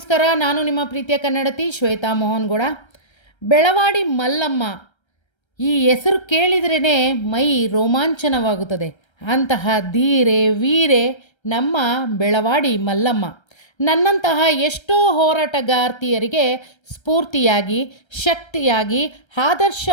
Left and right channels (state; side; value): late; right; 1.3 ms